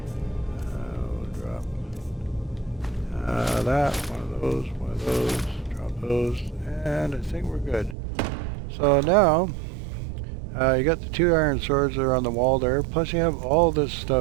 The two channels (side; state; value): left; drops out; at 8.0 s